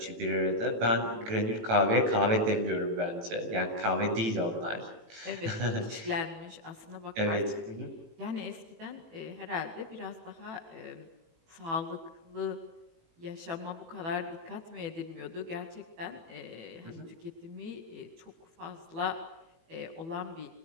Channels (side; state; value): left; late; 18 ms